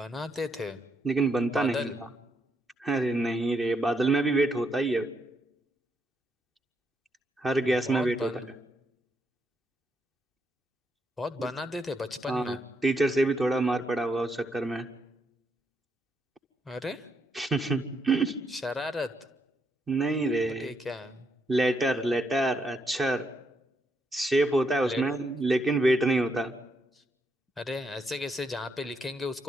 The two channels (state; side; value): normal; both; correlation 0.78